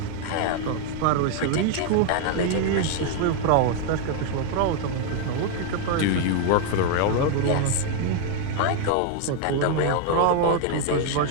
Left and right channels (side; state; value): both; different; correlation 0.00